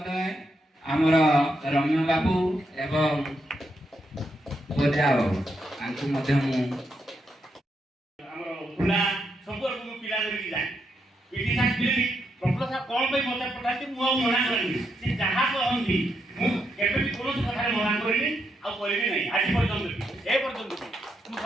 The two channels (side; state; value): both; normal; correlation 0.81